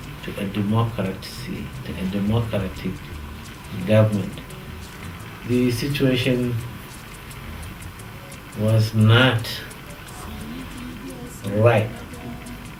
to a democracy, to a democratic government. The situation was not right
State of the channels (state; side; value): identical; both; correlation 1.00